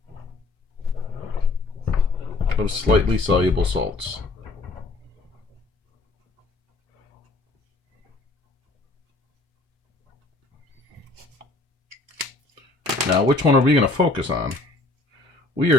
of slightly soluble salts. Now, which one are we going to focus on? We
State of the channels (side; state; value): right; quieter; 3.3 dB